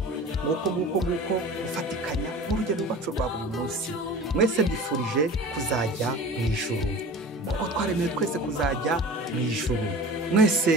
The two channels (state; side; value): normal; both; correlation 0.38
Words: Nguko gufatikanya mu rugendo rwacu rwa buri munsi. Mwese mbifurije kuzajya mu ijuru, kuko twaremewe twese kuzajya mu ijuru.